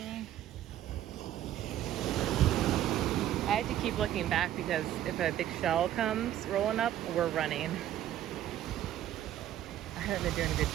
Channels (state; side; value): quieter; left; 12.1 dB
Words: I had to keep looking back because if a big shell comes rolling up, we're running. I haven't been doing a good